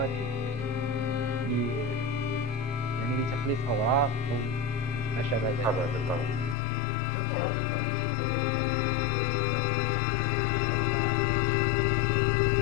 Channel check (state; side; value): drops out; right; at 6.6 s